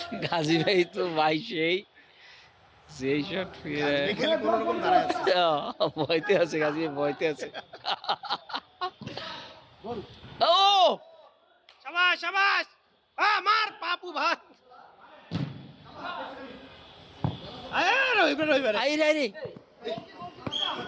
গাজী ভাই তো ভাই সেই শট খেলে কোনো রকম দাঁড়ায় আছে ভয়তে আছে গাজী ভাই ভয়তে আছে ও শাবাশ শাবাশ মার পাপু ভাই আয় রইবে রইবে আই রে রে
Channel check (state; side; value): identical; both; correlation 1.00